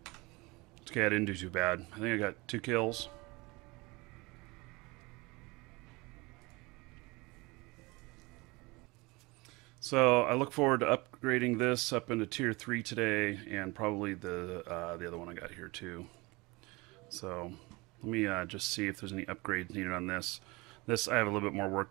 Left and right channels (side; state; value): left; quieter; 24.4 dB